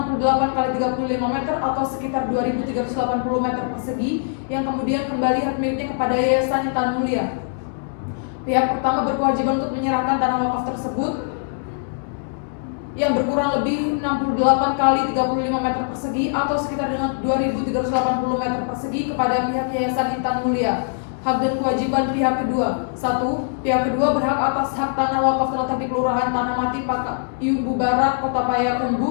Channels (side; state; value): right; silent; digital silence